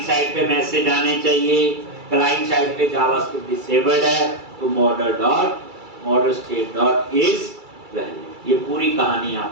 side पे मैसेज आने चाहिए, क्लाइंट साइड पे जावास्क्रिप्ट डिसेबल्ड है तो model state dot is valid. ये पूरी कहानी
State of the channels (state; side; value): late; left; 2.3 ms